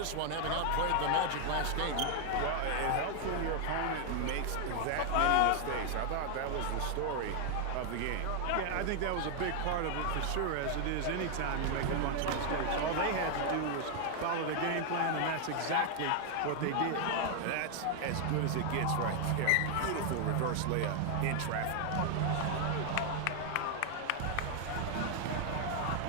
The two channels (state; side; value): different; both; correlation 0.00